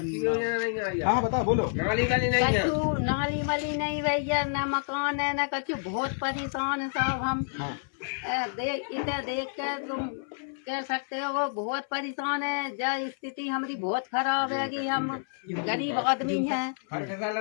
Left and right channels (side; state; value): right; silent; 59 dB below the other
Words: हाँ बताओ, बोलो। नाली वाली नहीं भैया, न मकान है न कछु। बहुत परेशान है साहब हम। इधर देख कर तुम कह सकते हो वो बहुत परेशान है। जब स्थिति हमारी बहुत खराब है कि हम गरीब आदमी हैं,